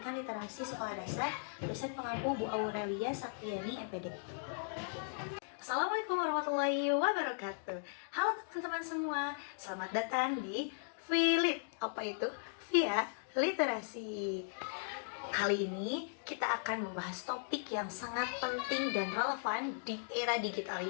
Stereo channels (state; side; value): silent; right; digital silence